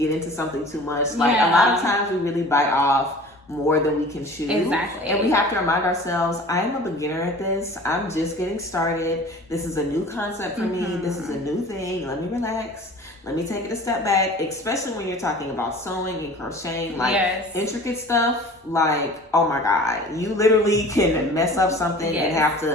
into something too much. Like a lot of times we really bite off more than we can chew. Exactly. And we have to remind ourselves, I am a beginner at this. I'm just getting started. This is a new concept for me. This is a new thing. Let me relax. Let me take it a step back, especially when you're talking about sewing and crocheting, like intricate stuff. Like, oh my God, you literally can mess up something and have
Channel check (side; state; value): both; normal; correlation 0.43